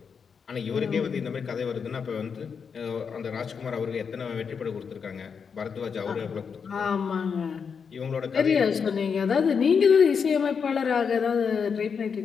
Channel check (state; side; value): quieter; right; 6.2 dB